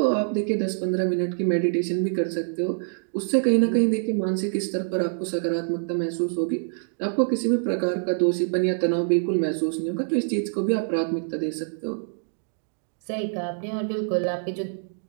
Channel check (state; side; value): silent; left; digital silence